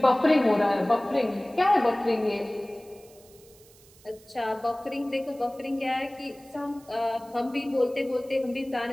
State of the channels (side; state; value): right; noise; hiss, 26 dB below the sound